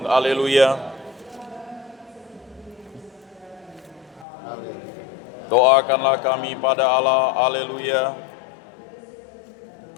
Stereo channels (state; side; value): drops out; right; at 4.2 s